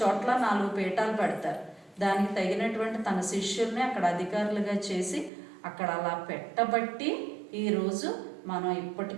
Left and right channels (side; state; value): left; drops out; at 5.3 s